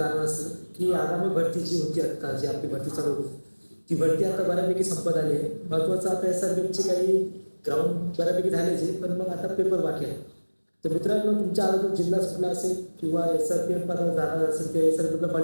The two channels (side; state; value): both; inverted; correlation -1.00